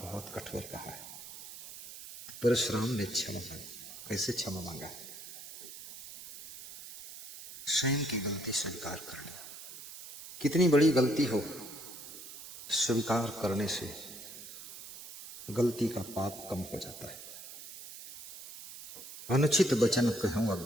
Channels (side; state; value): right; noise; hiss, 12 dB below the sound